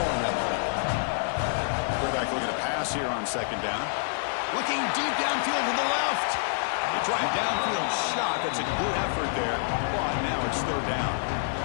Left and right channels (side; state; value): right; silent; 60 dB below the other